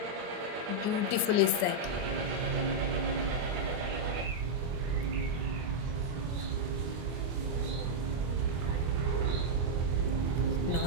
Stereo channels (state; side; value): late; left; 24 ms